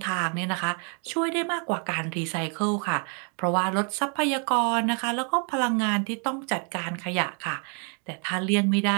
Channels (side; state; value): left; quieter; 39.0 dB